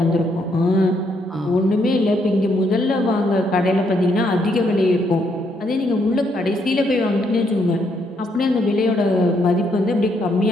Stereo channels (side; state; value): both; normal; correlation 0.74